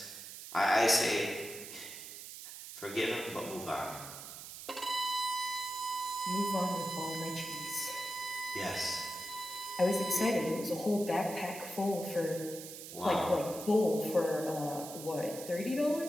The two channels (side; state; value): right; noise; hiss, 11 dB below the sound